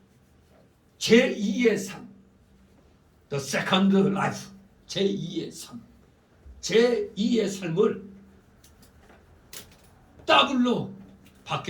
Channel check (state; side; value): identical; both; correlation 1.00